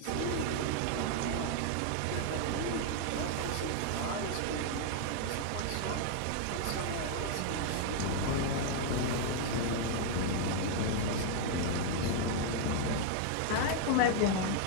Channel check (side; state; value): both; different; correlation 0.00